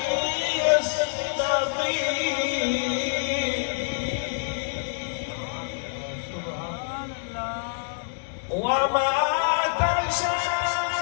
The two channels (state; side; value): silent; right; 61 dB below the other